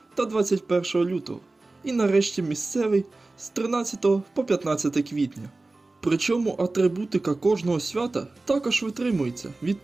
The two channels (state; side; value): quieter; left; 3.2 dB